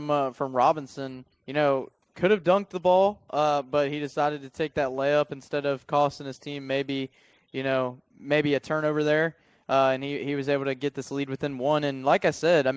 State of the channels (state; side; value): identical; both; correlation 1.00